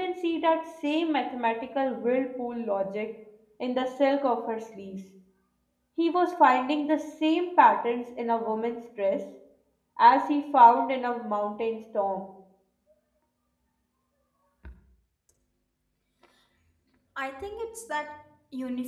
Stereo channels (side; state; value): both; identical; correlation 1.00